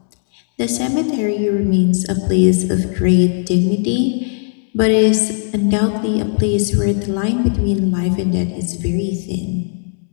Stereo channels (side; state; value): right; silent; digital silence